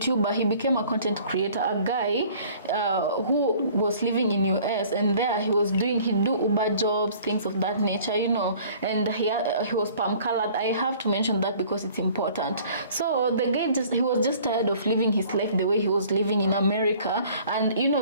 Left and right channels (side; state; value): both; inverted; correlation -0.52